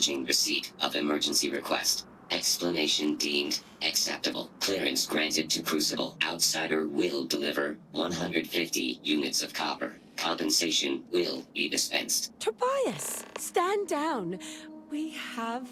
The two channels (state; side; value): identical; both; correlation 1.00